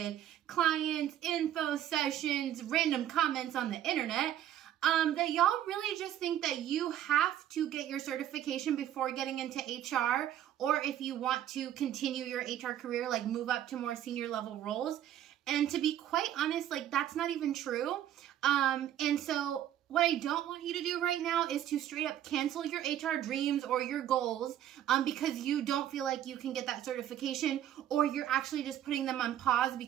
clients, info sessions, random comments on the internet, that y'all really just think that you have to get your certification before getting into HR, or if you want to continue your HR career, like move up to more senior level roles. And to be quite honest, like that's not even true. And so what I don't want you to do right now is to straight up cancel your HR dreams or your goals because you don't feel like you can get that certification, or you're actually just putting them on pause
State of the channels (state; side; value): quieter; left; 11.4 dB